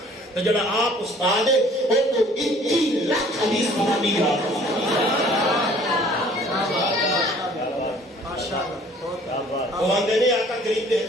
تو جڑا آپ استاد ہے وہ تو 21 لاکھ حدیث بنانی ہے۔ وہ آندے نے آقا کریم دے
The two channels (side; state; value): both; normal; correlation 0.54